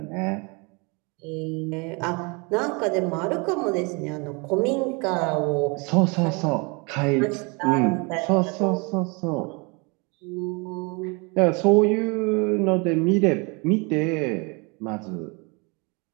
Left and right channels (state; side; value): quieter; left; 30.2 dB